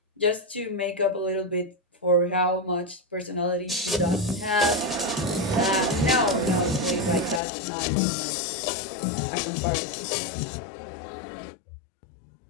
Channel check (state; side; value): drops out; right; at 7.4 s